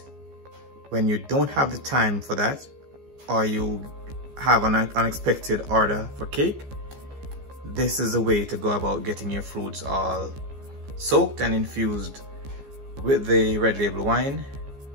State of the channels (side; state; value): left; late; 14 ms